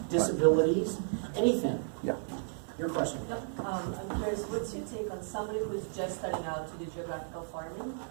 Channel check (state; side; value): silent; left; 55 dB below the other